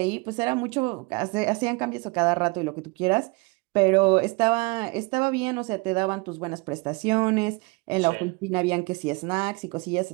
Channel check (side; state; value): left; quieter; 26.9 dB